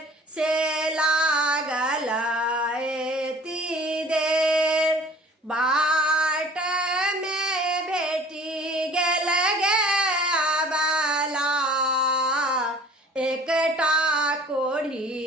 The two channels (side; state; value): both; normal; correlation 0.48